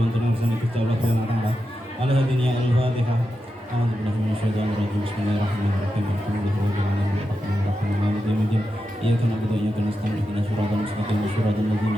ngarsanipun Allah Subhanahu wa taala. على هدينا الفاتحة. أعوذ بالله من الشيطان الرجيم. بسم الله الرحمن الرحيم. الحمد لله رب العالمين الرحمن الرحيم مالك يوم الدين. إياك نعبد وإياك نستعين اهدنا الصراط المستقيم صراط الذين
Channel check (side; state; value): both; normal; correlation 0.89